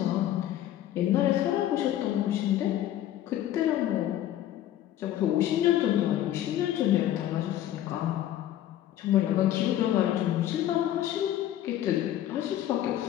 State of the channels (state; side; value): quieter; right; 12.4 dB